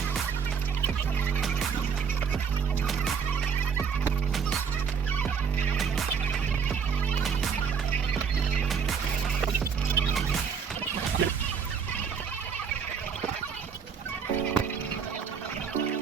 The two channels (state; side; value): quieter; left; 6.4 dB